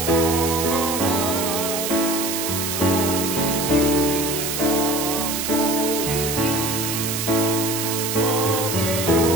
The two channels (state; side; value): noise; right; hiss, 2 dB below the sound